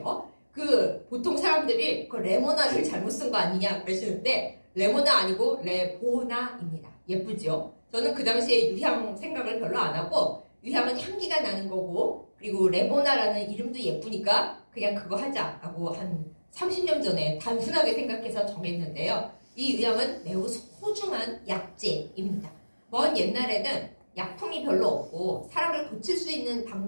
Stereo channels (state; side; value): inverted; both; correlation -1.00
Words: 그 보통 사람들이 그 레모나를 잘못 쓴 거 아니냐 그러시는데 레모나 아니고 레보나입니다. 예쁘죠? 저는 그 당시에 유향 생각을 별로 안 하고 유향은 향기가 나는 거고 그리고 레보나라는 이름도 예쁘니까 그냥 그거 하자라고 한 30년 전에 단순하게 생각해서 정했는데요. 이 유향은 매우 소중한 약재입니다. 먼 옛날에는 약품이 별로 없고 사람을 고칠 수 있는